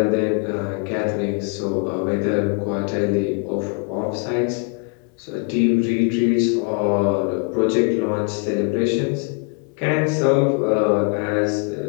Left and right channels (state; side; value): quieter; right; 35.9 dB